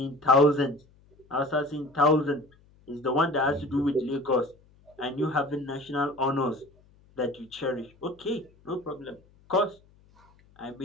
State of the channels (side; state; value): left; noise; hum, 30 dB below the sound